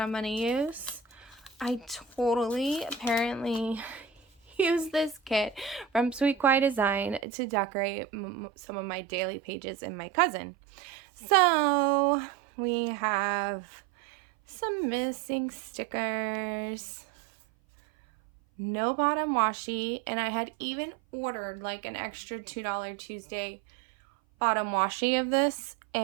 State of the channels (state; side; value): drops out; left; at 7.2 s